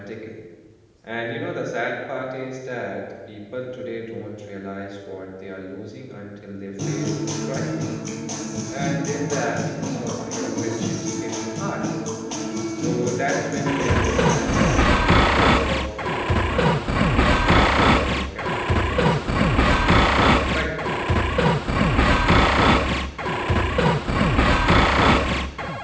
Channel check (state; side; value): identical; both; correlation 1.00